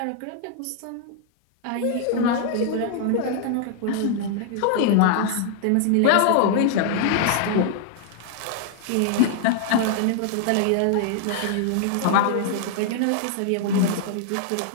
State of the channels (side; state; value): both; different; correlation 0.00